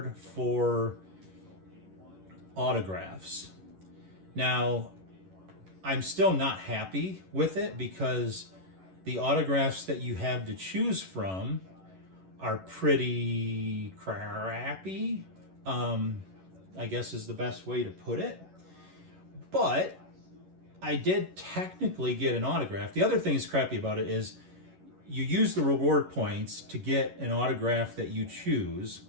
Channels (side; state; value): left; late; 11 ms